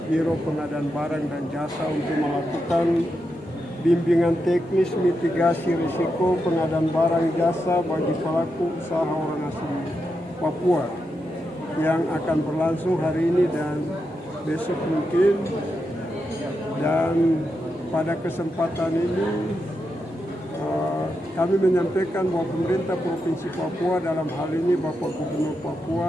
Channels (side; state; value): both; normal; correlation 0.86